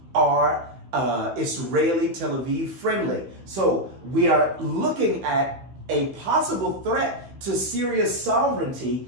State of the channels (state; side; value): late; left; 15 ms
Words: are Israeli Tel Aviv friendly. So we are looking at a possible threat to Syria's sovereignty,